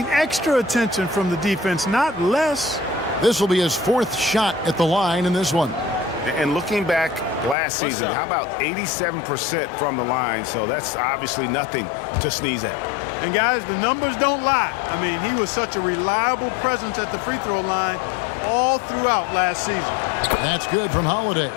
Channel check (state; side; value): drops out; right; at 7.6 s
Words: extra attention from the defense, not less. This will be his fourth shot at the line in this one. And looking back last season, how about 87% from the line? So that's obviously nothing to sneeze at. And guys, the numbers don't lie. I mean, he was such a reliable presence at the free throw line all throughout last season. That's good from Holiday.